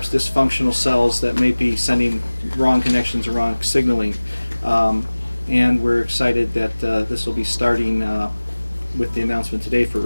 dysfunctional cells that may be sending wrong connections or wrong signaling. And we're excited that this will be starting with the announcement today for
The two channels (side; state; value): both; inverted; correlation -1.00